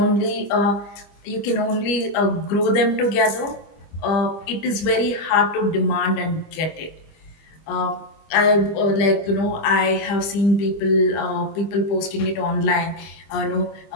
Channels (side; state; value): right; late; 25 ms